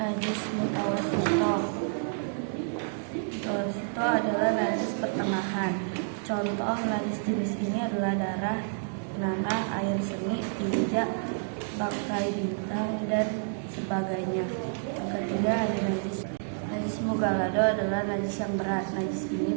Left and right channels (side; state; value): left; silent; digital silence